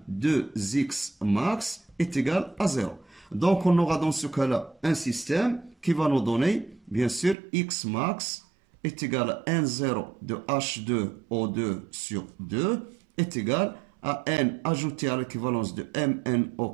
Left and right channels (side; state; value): left; drops out; at 7.4 s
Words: 2X max est égal à 0. Donc on aura dans ce cas-là un système qui va nous donner, bien sûr, X max est égal à N0 de H2O2 sur 2 est égal à N ajouté à l'équivalence de